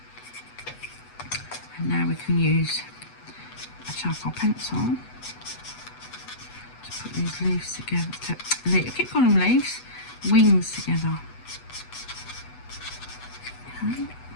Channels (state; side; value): late; right; 8.1 ms